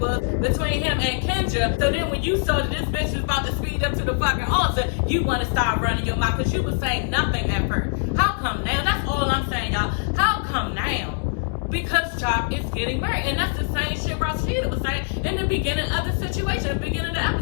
between him and Kendra. So then when you saw that this bitch was about to speed up to the fucking altar, you want to start running your mouth because you was saying nothing at first. How come now? That's all I'm saying, y'all. How come now? Because Jock is getting married. And that's the same shit Rashida was saying in the beginning of the situation, the beginning of the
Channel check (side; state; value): right; silent; digital silence